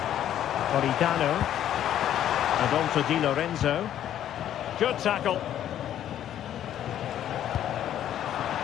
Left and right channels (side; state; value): right; quieter; 11.1 dB